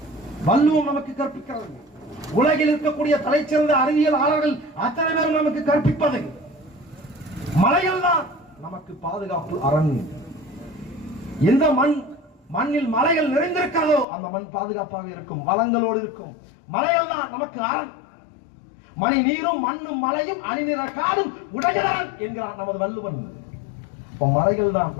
வள்ளுவம் நமக்கு கற்பிக்கிறது, உலகில் இருக்கக்கூடிய தலைச்சிறந்த அறிவியலாளர்கள் அத்தனை பேரும் நமக்கு கற்பிப்பது மலைகள் தான் நமக்கு பாதுகாப்பு அரண். எந்த மண்ணில் மலைகள் நிறைந்திருக்கிறதோ அந்த மண் பாதுகாப்பாக இருக்கும், வளங்களோடு இருக்கும். மலைகள் தான் நமக்கு அரண். மணி நீரும் மண்ணும் மலையும் அணிநிற காடும் உடையதான் என்கிறான் நமது வள்ளுவன். மலைகள் தான்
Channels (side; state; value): right; drops out; at 14.1 s